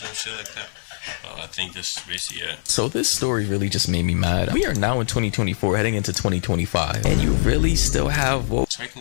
shit like that. I think this is basically it. So this story really just made me mad. We are now in 2024, heading into 2025, and you really still have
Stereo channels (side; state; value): right; silent; digital silence